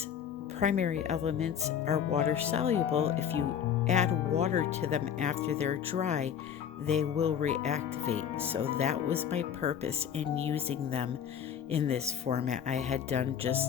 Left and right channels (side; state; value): right; quieter; 8.7 dB